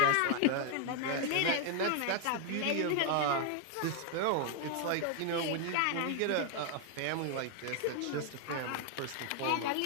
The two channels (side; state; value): both; different; correlation 0.00